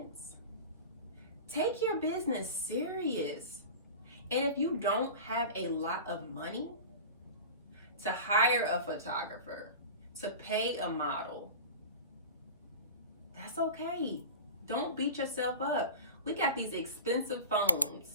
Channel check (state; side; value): inverted; both; correlation -0.33